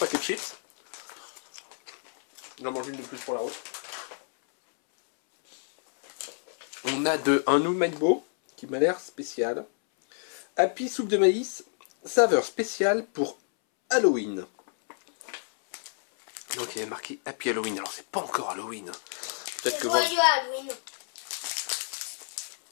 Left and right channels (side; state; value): right; silent; 59 dB below the other